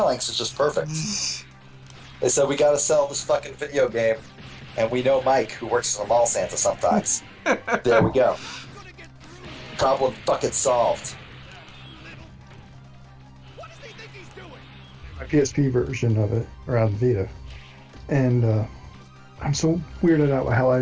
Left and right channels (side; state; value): both; identical; correlation 1.00